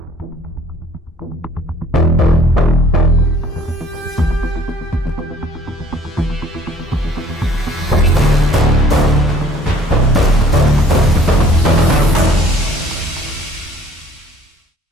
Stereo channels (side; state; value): both; normal; correlation 0.54